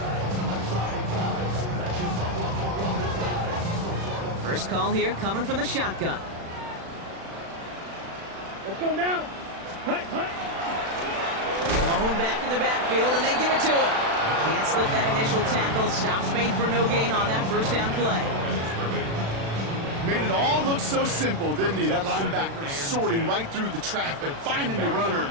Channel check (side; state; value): left; late; 36 ms